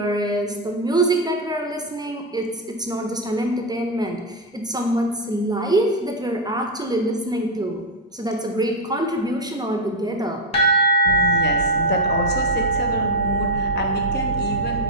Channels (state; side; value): normal; both; correlation 0.05